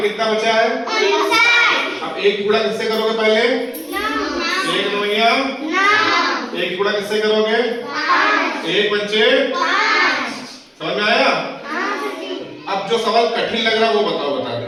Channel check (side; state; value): both; identical; correlation 1.00